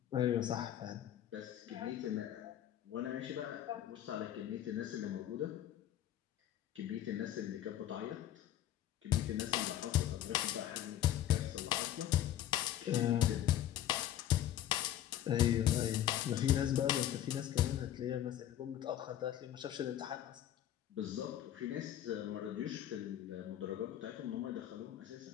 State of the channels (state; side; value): quieter; right; 11.8 dB